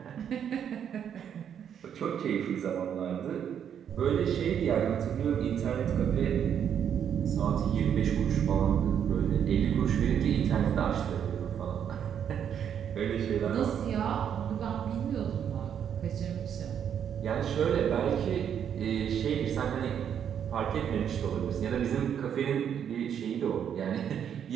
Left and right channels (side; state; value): left; quieter; 8.7 dB